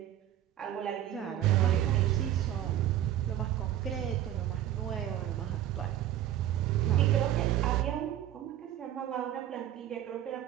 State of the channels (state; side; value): quieter; left; 12.0 dB